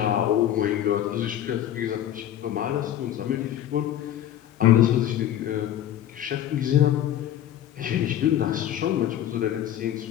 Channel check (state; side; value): quieter; right; 11.4 dB